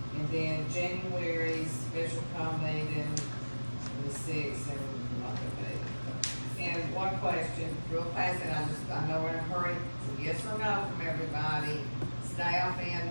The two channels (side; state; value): both; inverted; correlation -1.00